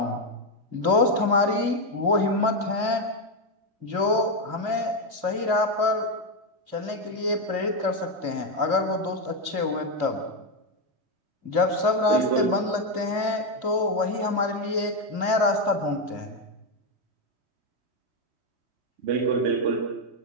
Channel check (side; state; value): left; late; 2.6 ms